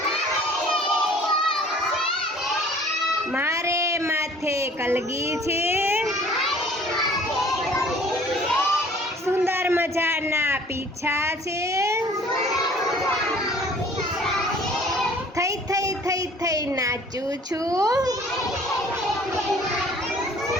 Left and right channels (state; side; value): normal; both; correlation 0.52